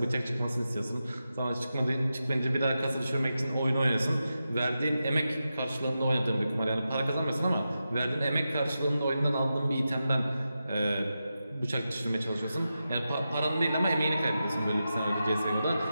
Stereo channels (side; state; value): both; inverted; correlation -0.90